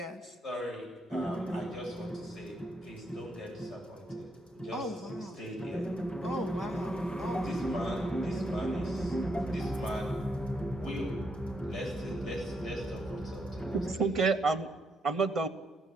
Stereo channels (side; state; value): both; normal; correlation 0.77